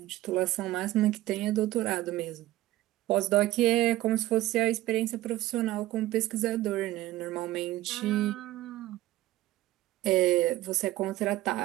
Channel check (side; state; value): left; quieter; 16.2 dB